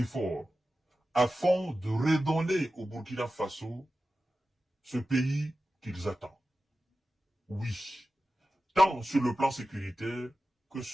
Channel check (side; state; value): both; normal; correlation 0.94